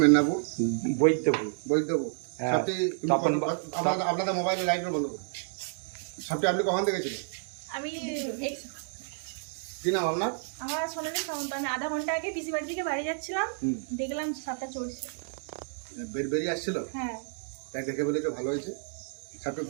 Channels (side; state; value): left; silent; 58 dB below the other